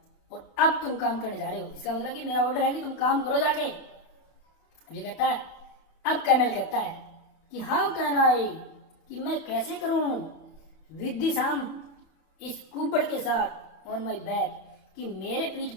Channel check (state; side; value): late; right; 31 ms